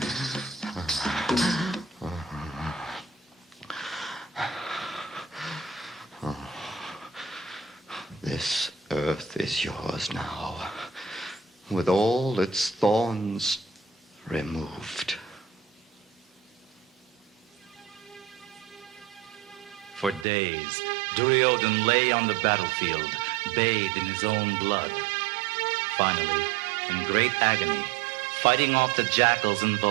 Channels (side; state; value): left; drops out; at 20.2 s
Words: This earth is yours now, with all its thorns removed. For days, Duryodhan lay on the battlefield, bathed in his own blood. Finally, in great agony, fighting off the jackals and